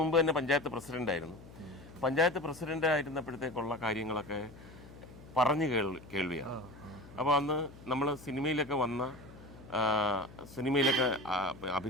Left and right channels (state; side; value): noise; left; hum, 18 dB below the sound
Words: തന്നെ പഞ്ചായത്ത് പ്രസിഡൻ്റായിരുന്നു. പഞ്ചായത്ത് പ്രസിഡൻ്റ് ആയിരുന്നപ്പോഴത്തേക്കുള്ള കാര്യങ്ങളൊക്കെ പറഞ്ഞു കേൾവിയാണ്. അപ്പോൾ അന്ന് നമ്മൾ സിനിമയിലൊക്കെ